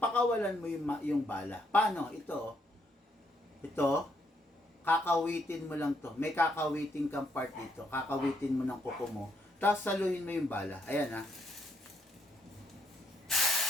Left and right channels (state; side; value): normal; both; correlation 0.74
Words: mo yung bala. Paano? Ito, kakawitin mo lang to. May kakawitin kang part dito. Kakawitin mo ng kuko mo. Tapos saluhin mo yung bala. Ayan ha.